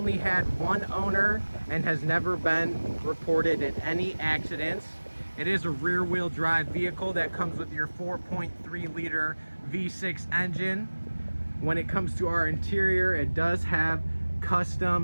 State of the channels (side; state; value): both; inverted; correlation -1.00